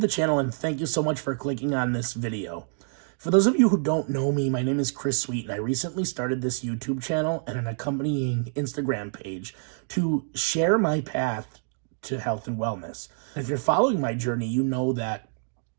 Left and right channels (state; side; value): silent; left; 60 dB below the other